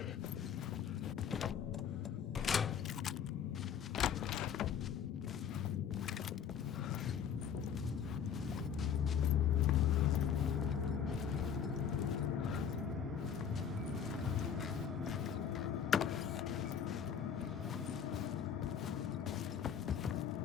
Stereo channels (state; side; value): quieter; right; 7.9 dB